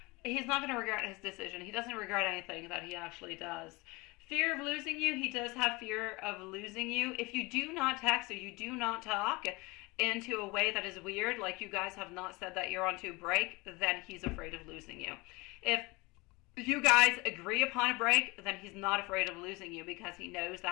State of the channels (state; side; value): quieter; right; 24.0 dB